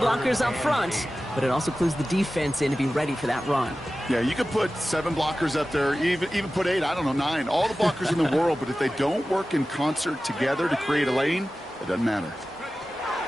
up front, but it also clues the defense in to be ready for that run. Yeah, you could put 7 blockers up there, even put 8, I don't know, 9. All the blockers in the world, but if they don't work in concert together to create a lane, it doesn't matter.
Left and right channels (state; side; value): normal; both; correlation 0.95